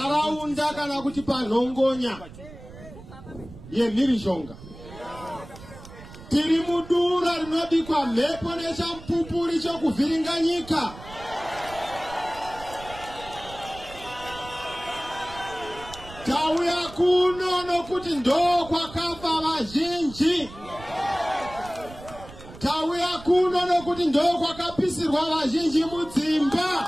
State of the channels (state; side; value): noise; right; rumble, 17 dB below the sound